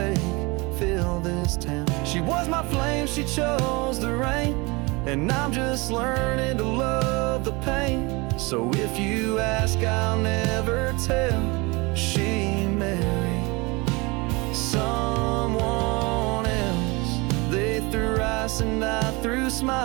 fill this town. She was my flame, she chose the rain, and I'm just learning to love the pain. So if you ask, I'll never tell. She married someone else. They threw rice and I threw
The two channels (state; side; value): quieter; left; 25.9 dB